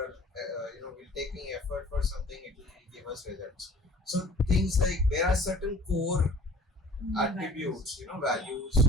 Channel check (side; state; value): both; normal; correlation 0.48